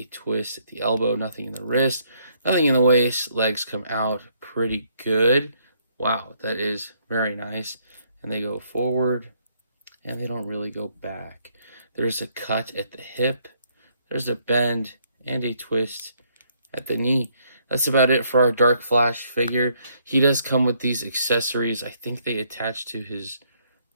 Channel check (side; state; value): both; inverted; correlation -0.69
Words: twist at the elbow. Nothing in the wrist. Nothing in the waist. Legs come out pretty good. Wow, that is very nice. And they go forward, and they don't really go back. There's a cut at the hip. There's a bend and a twist at the knee. That's about it for our Dark Flash figure. He does come with these accessories. I think they attach to his